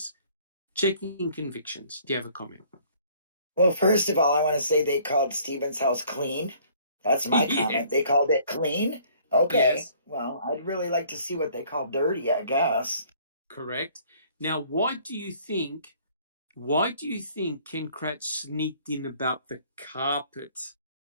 Checking convictions. Do you have a comment? Well, first of all, I want to say they called Stephen's house clean. That's my comment. They called it clean? Okay. Yes. Well, I'd really like to see what they call dirty, I guess. Correct. Now, why do you think Ken Kratz sneaked in about the carpets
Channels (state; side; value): inverted; both; correlation -0.57